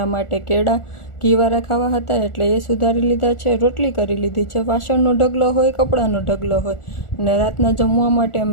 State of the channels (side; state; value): right; late; 1.4 ms